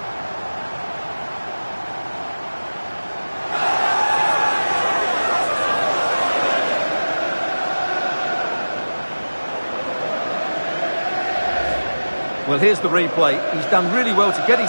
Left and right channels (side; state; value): both; inverted; correlation -1.00